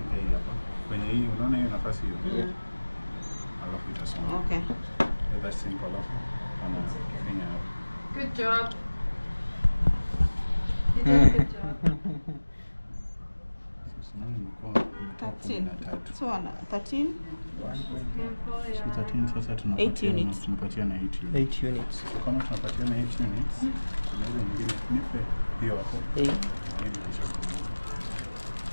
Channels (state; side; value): inverted; both; correlation -1.00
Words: hii hapa. Kwenye hii unaona hiyo nafasi hiyo. Alafu itasonga. Okay. That's simple alafu. Anafanya hapo. Good job. You did a good job. 13. So 13. So 13 sasa tunapatia na 8 units. 8 units. So kama tunapatia na 8 units, tunaweza nyingine nipe hiyo hapo.